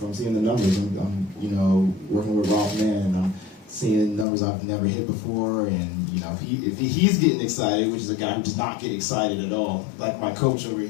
I'm seeing the numbers. I'm working with Ralph Mann. I'm seeing numbers I've never hit before. And, if he's getting excited, which is a guy who does not get excited at all, like my coach over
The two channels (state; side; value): drops out; right; at 4.2 s